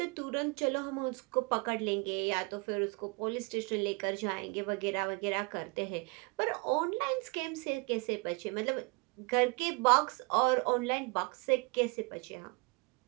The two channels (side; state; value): left; quieter; 29.2 dB